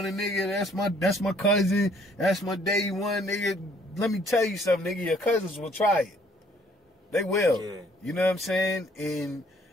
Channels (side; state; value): both; normal; correlation 0.62